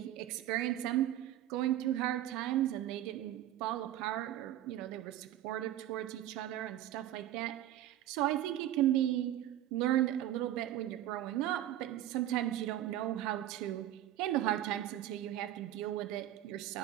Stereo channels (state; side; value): quieter; left; 12.9 dB